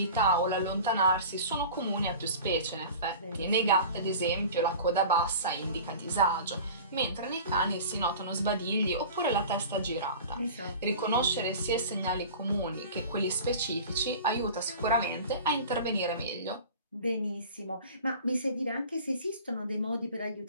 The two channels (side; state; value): both; inverted; correlation -0.38